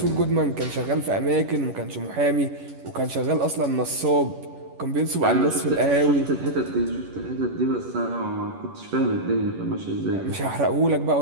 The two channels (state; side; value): late; left; 11 ms